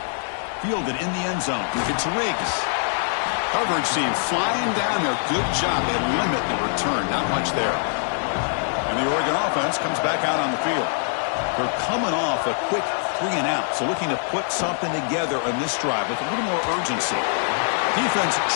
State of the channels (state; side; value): silent; right; digital silence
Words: Fielded in the end zone. It's Riggs. Coverage team flying down there. Good job. They limit the return. Not much there. And the Oregon offense comes back out on the field. They're coming off a quick 3-and-out, so looking to put something together on this drive with a little more urgency. Defense